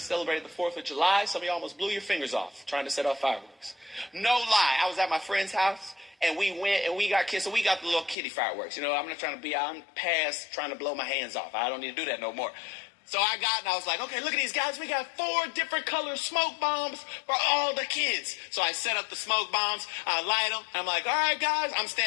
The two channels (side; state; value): right; drops out; at 8.2 s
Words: celebrated the 4th of July. Some of you almost blew your fingers off trying to set off fireworks. No lie. I was at my friend's house, and we went, and we got kids, so we got the little kiddie fireworks. You know, I'm past trying to blow my hands off. I don't need to do that no more. So I was like, okay, look at these guys. We got 4 different color smoke bombs for all the kids. So I set up the smoke bombs. I light them. I'm like, all right, guys. I'm